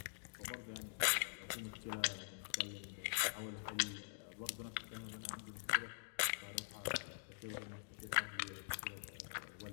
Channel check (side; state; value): right; silent; digital silence